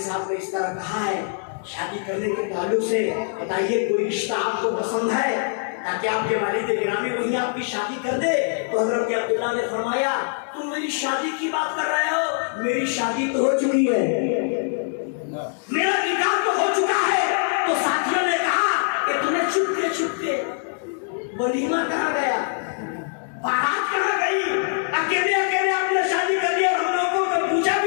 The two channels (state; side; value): silent; right; digital silence